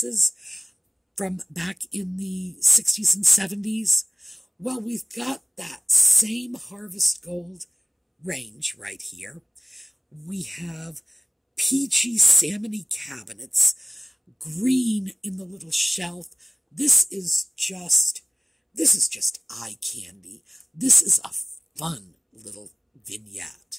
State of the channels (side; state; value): both; identical; correlation 1.00